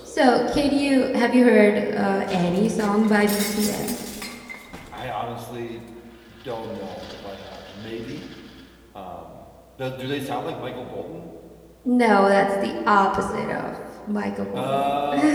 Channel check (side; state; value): both; identical; correlation 1.00